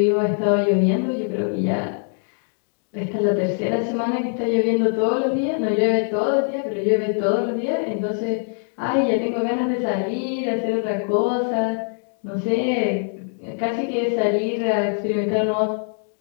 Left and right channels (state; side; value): silent; right; 60 dB below the other